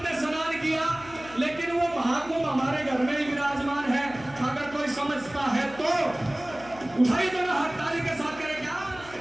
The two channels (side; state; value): left; noise; hum, 20 dB below the sound